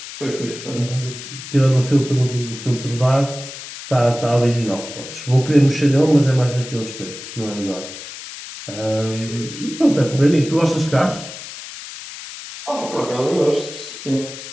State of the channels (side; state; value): left; noise; hiss, 12 dB below the sound